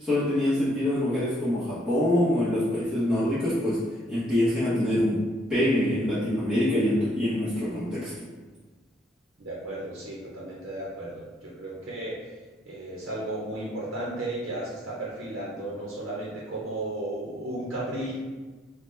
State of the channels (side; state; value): both; normal; correlation 0.70